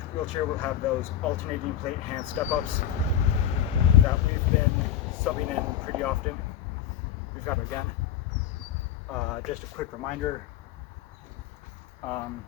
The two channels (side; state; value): right; quieter; 10.2 dB